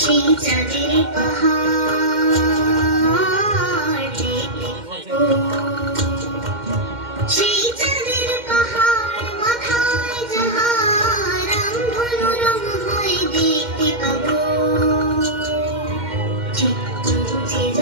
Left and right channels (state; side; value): late; left; 2.1 ms